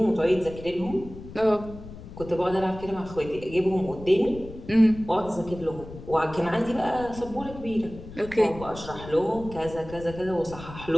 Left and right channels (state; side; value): noise; left; rumble, 14 dB below the sound